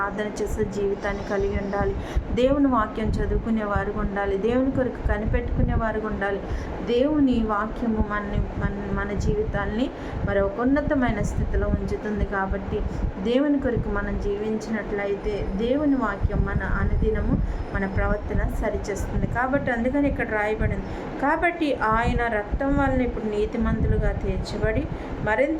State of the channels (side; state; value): both; identical; correlation 1.00